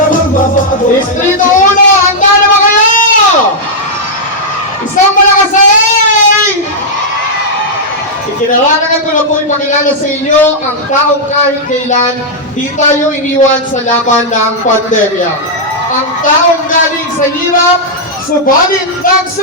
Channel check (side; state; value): both; normal; correlation -0.06